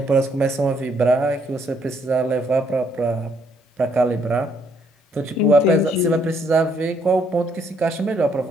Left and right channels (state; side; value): normal; both; correlation 0.69